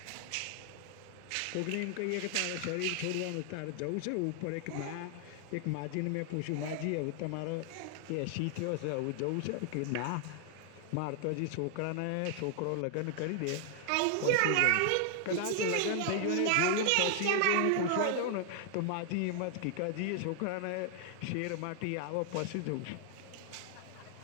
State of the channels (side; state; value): both; different; correlation 0.00